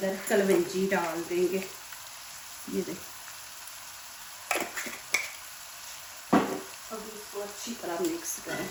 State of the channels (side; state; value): both; identical; correlation 1.00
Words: कलवंजी डाल देंगे। ये देखिए, अब इसको अच्छी तरह मिक्स करें